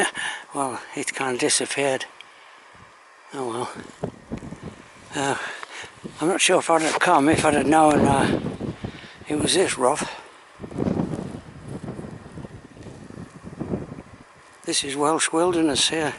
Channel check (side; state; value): both; identical; correlation 1.00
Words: well, it's kind of disappeared. Oh well. I'm not sure if I'd have come if I'd have known it was this rough. This is Welsh wilderness here,